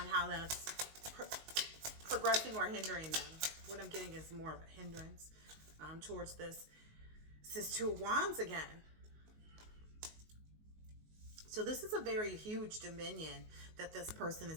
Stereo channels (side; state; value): left; late; 19 ms